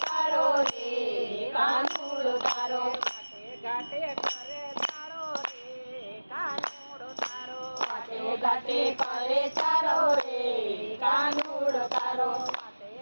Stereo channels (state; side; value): inverted; both; correlation -1.00